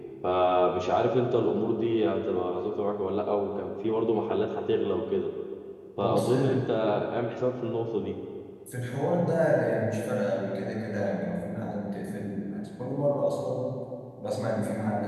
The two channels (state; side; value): identical; both; correlation 1.00